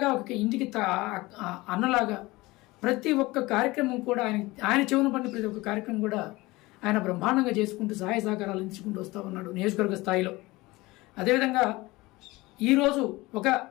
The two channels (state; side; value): quieter; right; 21.0 dB